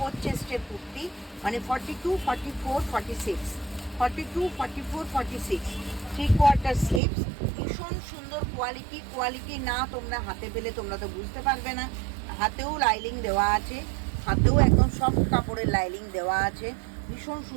চেস্টের কুর্তি, মানে 42, 44, 46, 42, 44, 46, 3/4 স্লিভস। ভীষণ সুন্দর কোয়ালিটি না তোমরা হাতে পেলে তোমরা তো বুঝতে পারবে না। হাতেও লাইলিং দেওয়া আছে, হাতেও একদম সফট কাপড়ের লাইলিং দেওয়া আছে, ভীষণ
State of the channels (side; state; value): left; drops out; at 7.0 s